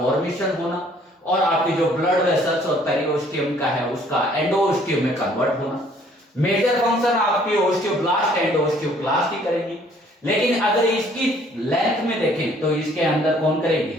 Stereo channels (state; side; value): normal; both; correlation 0.60